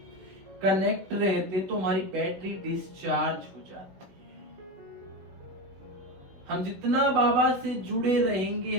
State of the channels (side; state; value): left; late; 16 ms